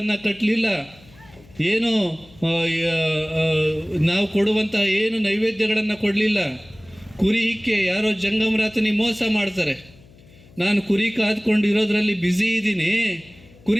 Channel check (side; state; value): left; noise; hum, 25 dB below the sound